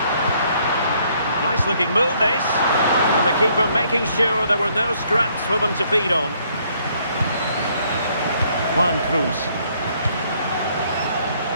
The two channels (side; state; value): both; inverted; correlation -0.67